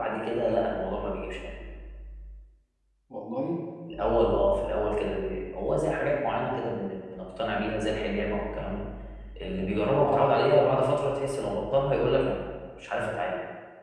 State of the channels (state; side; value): identical; both; correlation 1.00